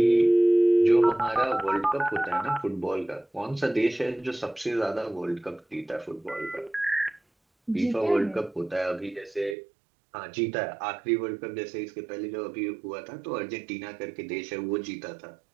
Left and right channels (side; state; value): left; drops out; at 9.6 s